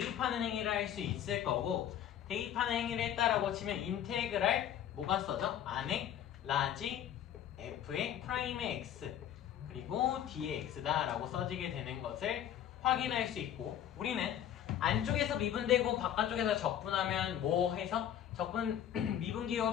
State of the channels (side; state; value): right; quieter; 10.4 dB